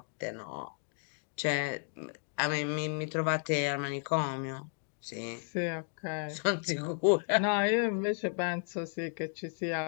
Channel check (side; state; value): right; silent; 55 dB below the other